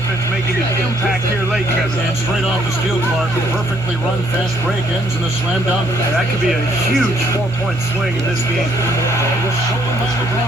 making an impact here late, Kevin. And straight off the steal, Clark. A perfectly run fast break ends in a slam dunk. That could be a huge 4-point swing in this game. It was stolen by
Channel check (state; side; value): normal; both; correlation 0.68